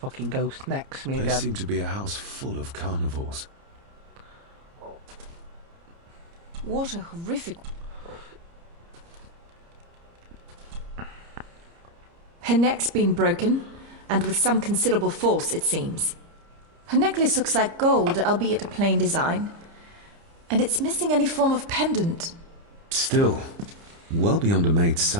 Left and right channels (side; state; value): left; late; 30 ms